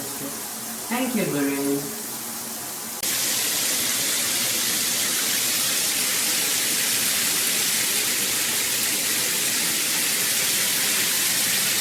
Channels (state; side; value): identical; both; correlation 1.00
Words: Thank you, GURIN.